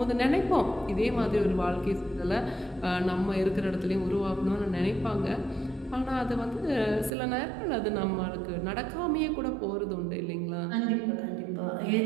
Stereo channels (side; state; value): left; drops out; at 7.1 s